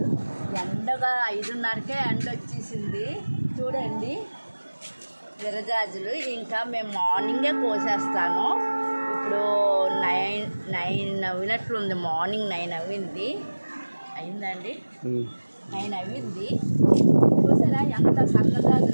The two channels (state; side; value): inverted; both; correlation -1.00